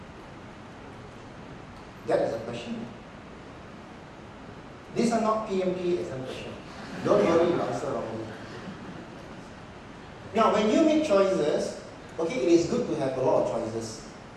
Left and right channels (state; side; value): identical; both; correlation 1.00